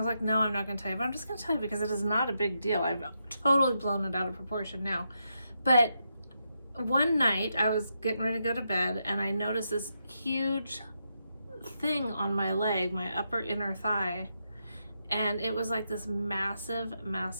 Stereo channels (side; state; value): both; inverted; correlation -0.83